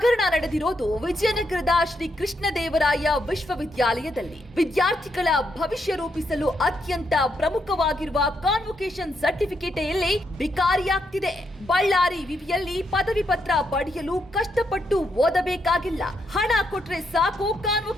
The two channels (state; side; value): normal; both; correlation 0.79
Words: ನಡೆದಿರೋದು ವಿಜಯನಗರದ ಶ್ರೀ ಕೃಷ್ಣದೇವರಾಯ ವಿಶ್ವವಿದ್ಯಾಲಯದಲ್ಲಿ. ವಿದ್ಯಾರ್ಥಿಗಳ ಭವಿಷ್ಯ ರೂಪಿಸಲು ಅತ್ಯಂತ ಪ್ರಮುಖವಾಗಿರುವ ಕಾನ್ವೊಕೇಶನ್ ಸರ್ಟಿಫಿಕೇಟ್ ಇಲ್ಲಿ ಬಿಕಾರಿಯಾಗ್ತಿದೆ. ಬಳ್ಳಾರಿ ವಿವಿಯಲ್ಲಿ ಪದವಿ ಪತ್ರ ಪಡೆಯಲು ಕಷ್ಟಪಟ್ಟು ಓದಬೇಕಾಗಿಲ್ಲ. ಹಣ ಕೊಟ್ರೆ ಸಾಕು,